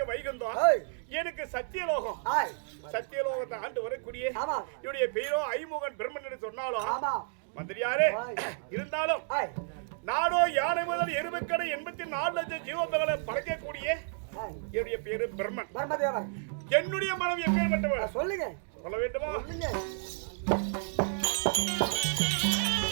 வைகுந்தம், எனக்கு சத்தியலோகம். சத்தியலோகத்தை ஆண்டு வரக்கூடிய என்னுடைய பேரோ ஐமுகன் பிரம்மன் என்று சொன்னாலும் மந்திரியாரே இருந்தாலும் நாடோ யானை முதல் எருமைக்கடை 84 லட்சம் ஜீவங்களை படைக்கக்கூடிய என்னுடைய பேரு பிரம்மன். என்னுடைய மனம் எப்பேற்பட்டவர் சொல்லுங்க, சொல்ல வேண்டுமா?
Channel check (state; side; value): silent; left; digital silence